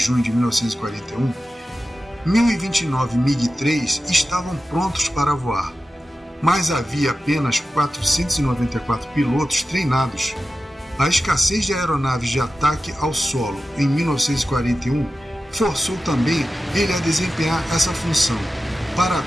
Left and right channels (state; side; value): normal; both; correlation 0.93